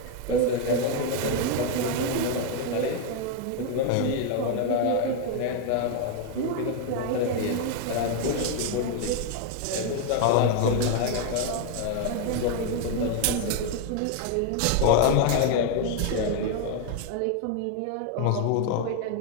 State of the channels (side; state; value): both; different; correlation 0.01